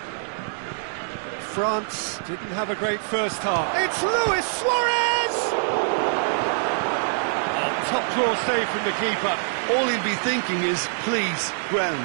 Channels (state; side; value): silent; left; 62 dB below the other